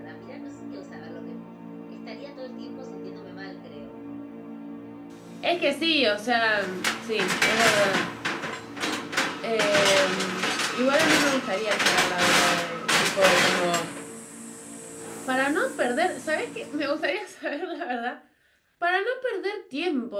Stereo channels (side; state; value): both; identical; correlation 1.00